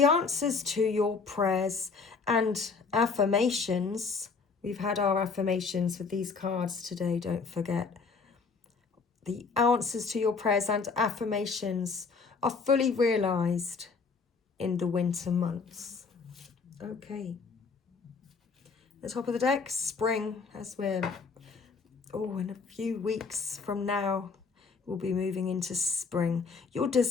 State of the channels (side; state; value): right; quieter; 4.8 dB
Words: answers to your prayers and affirmations. We've had our affirmations with these cards today, don't forget. The answers to your prayers and affirmations are fully realised in the winter months. Okay. The top of the deck, spring, as we're, in a few weeks from now, we'll be moving into spring. Your